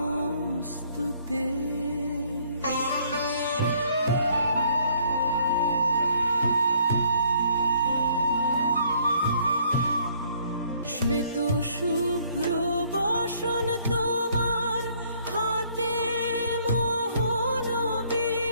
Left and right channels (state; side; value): inverted; both; correlation -0.63